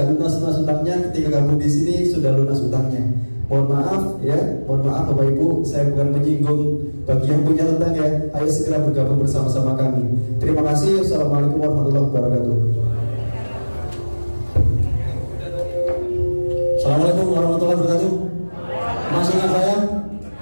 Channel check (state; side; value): inverted; both; correlation -1.00